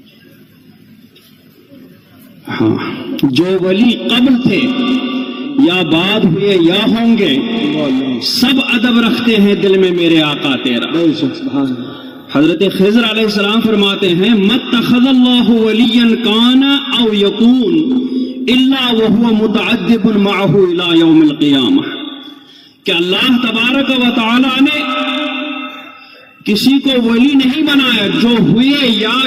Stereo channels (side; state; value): both; identical; correlation 1.00